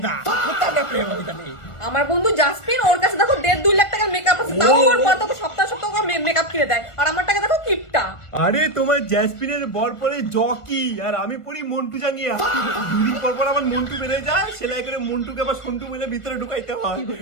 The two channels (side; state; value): right; late; 1.4 ms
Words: প্রেম হইতা নেই। আমার বন্ধু জাসমিন, ওর কাছে দেখো 1.5-2 লাখ টাকার মেকআপ আছে, তাও ওর পর তো সপ্তাহ মেকআপ কিনে দেয়, আর আমার টাকা দেখো কিপটা। আরে তোমার জ্যাসমিনের বর পরে জকি আর আমি পড়ি মন্টু জাঙ্গিয়া। দুদিন পর পর আমার মন্টু বেড়ে যায়, সেলাই করে মন্টুকে আবার সন্টু মিলে ভিতরে ঢুকাইতে হয়।